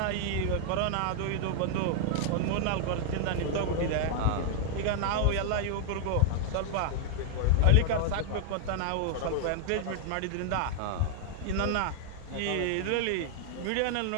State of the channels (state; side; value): different; both; correlation 0.00